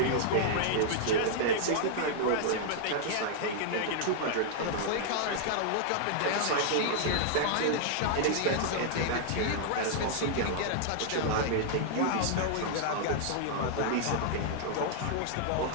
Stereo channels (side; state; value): both; different; correlation -0.01